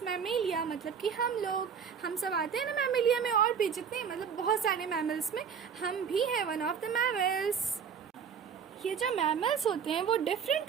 मैमेलिया, मतलब कि हम सब आते हैं ना मैमेलिया में, और भी जितने, मतलब बहुत सारे मैमल्स में हम भी हैं वन ऑफ द मैमल्स। ये जो मैमल्स होते हैं वो डिफरेंट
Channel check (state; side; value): quieter; left; 7.0 dB